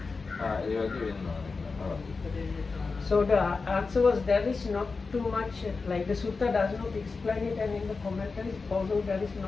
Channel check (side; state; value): right; quieter; 4.3 dB